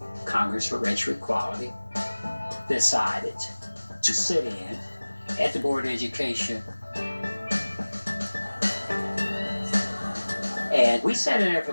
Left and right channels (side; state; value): both; inverted; correlation -1.00